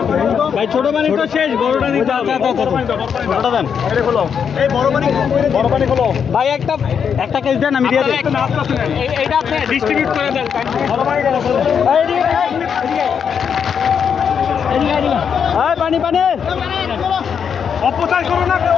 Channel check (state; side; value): quieter; right; 7.2 dB